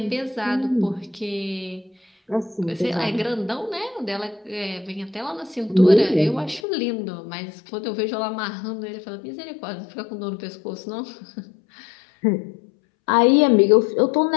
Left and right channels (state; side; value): drops out; right; at 6.6 s